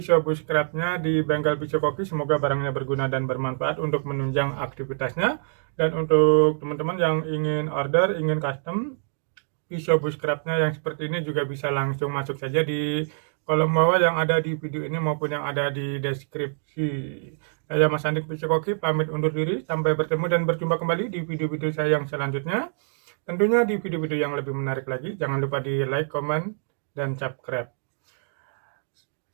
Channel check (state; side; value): silent; left; digital silence